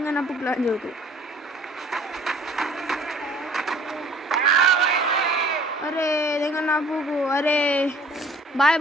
ప్లాన్ జరుగుతుంది అరే దింగన్నప్పు అరే బాయ్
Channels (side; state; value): both; normal; correlation 0.53